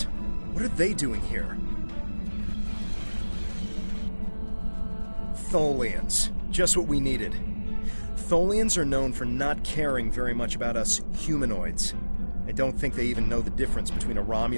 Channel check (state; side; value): inverted; both; correlation -1.00